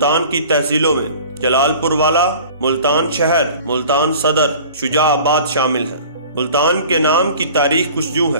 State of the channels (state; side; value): inverted; both; correlation -0.44